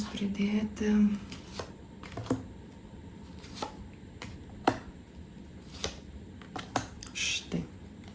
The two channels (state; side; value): identical; both; correlation 1.00